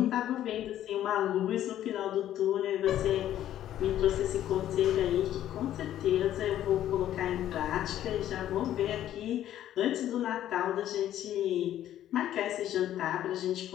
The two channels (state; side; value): quieter; right; 12.0 dB